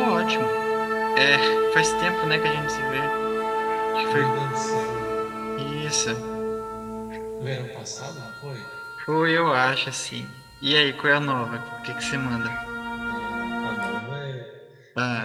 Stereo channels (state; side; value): identical; both; correlation 1.00